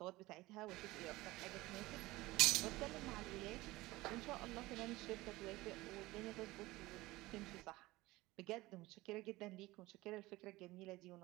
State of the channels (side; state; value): left; quieter; 19.6 dB